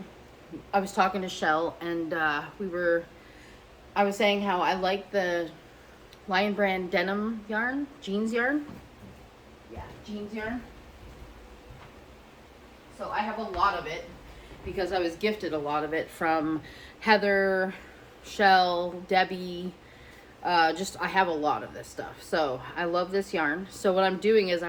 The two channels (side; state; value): both; identical; correlation 1.00